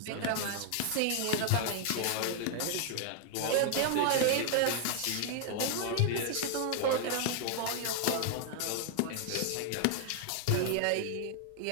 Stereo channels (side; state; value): both; different; correlation 0.00